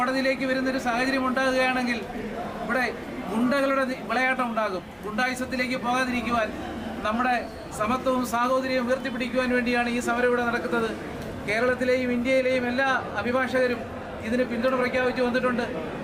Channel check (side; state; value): both; identical; correlation 1.00